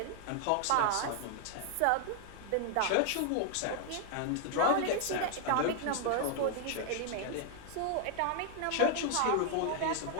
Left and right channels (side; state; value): both; different; correlation 0.00